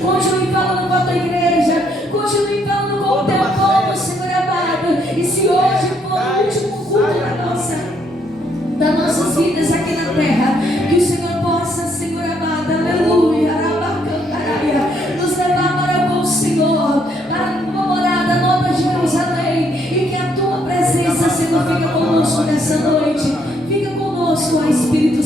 Continue falando com a Tua igreja, continue falando com o Teu povo, Senhor amado. E se hoje for o último culto das nossas vidas aqui na terra, que o Senhor possa, Senhor amado, aleluia, nos levar para com o Senhor, para a Tua morada, Nova Jerusalém, e que a Tua presença, Senhor, fica conosco nessa noite. Fica conosco, ó Espírito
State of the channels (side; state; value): both; normal; correlation 0.71